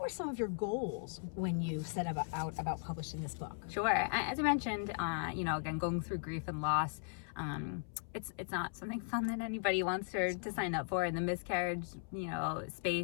some of your goals when you set out about publishing this book? Sure. As I mentioned, again, going through grief and loss, it's not something fun that anybody wants to sign up for. And the miscarriage,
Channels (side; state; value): right; silent; 53 dB below the other